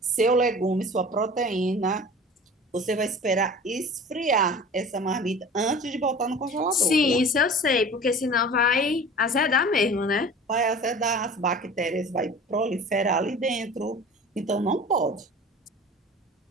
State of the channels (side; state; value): both; normal; correlation 0.40